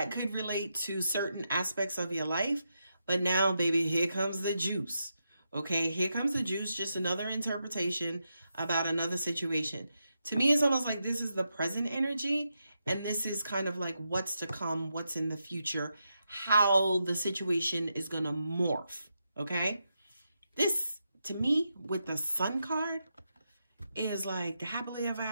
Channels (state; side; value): inverted; both; correlation -0.85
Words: could relate to certain aspects of your life. But now, baby, here comes the juice. Okay, here comes the juice. Just another interpretation about another situation. To me, it's almost like this is the present energy. And this is kind of like what's to come, what's in the future, how the situation is going to morph. Okay, this, to me, with the Sun card, is like the happily ever